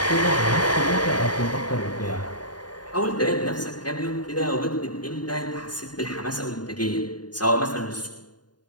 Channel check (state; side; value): late; right; 0.70 ms